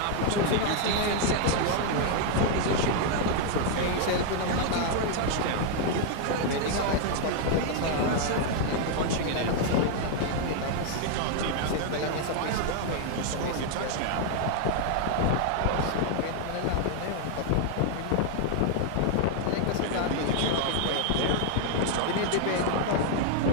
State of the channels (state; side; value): different; both; correlation 0.00